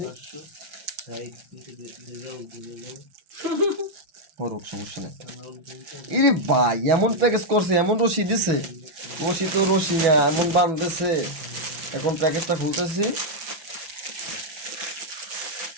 সমস্যা নেই। ইরে ভাই, এমন প্যাকেজ করছে, এমন রশি দিছে, রশি তো রশি না, এমন বাঁধতেছে। এখন প্যাকেজটা খুলতেছি।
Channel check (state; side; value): late; left; 5.8 ms